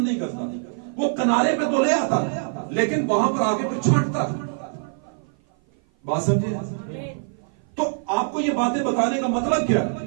नहीं करता, वो किनारे पे तो ले आता लेकिन वहां पर आगे फिर छांटता। बात समझे? तो आपको ये बातें बताने का मतलब क्या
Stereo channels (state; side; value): silent; left; 55 dB below the other